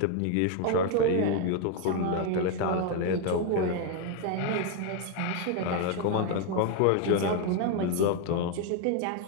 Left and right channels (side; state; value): both; different; correlation 0.01